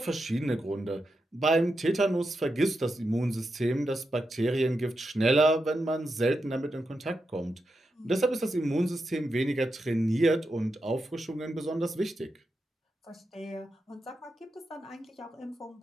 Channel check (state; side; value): normal; both; correlation 0.87